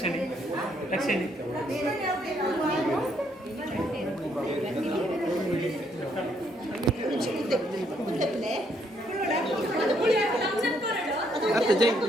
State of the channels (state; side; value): normal; both; correlation 0.71